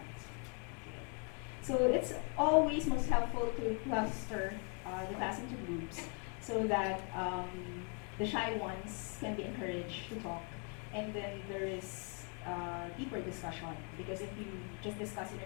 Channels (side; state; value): right; quieter; 38.2 dB